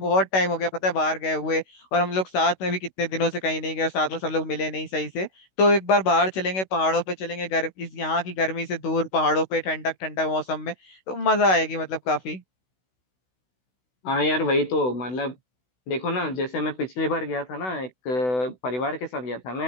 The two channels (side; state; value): right; late; 16 ms